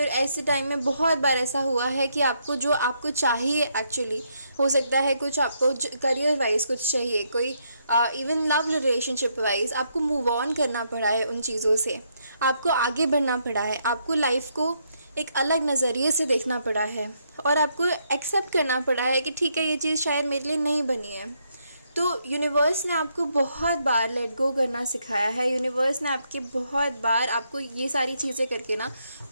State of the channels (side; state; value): both; inverted; correlation -0.76